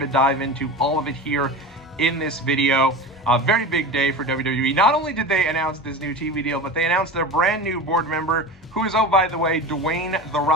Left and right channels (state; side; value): normal; both; correlation 0.30